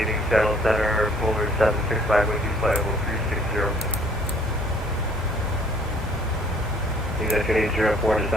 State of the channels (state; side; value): normal; both; correlation 0.58